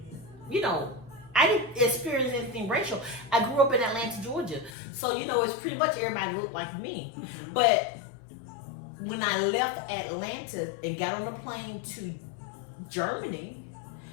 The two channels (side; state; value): right; drops out; at 4.7 s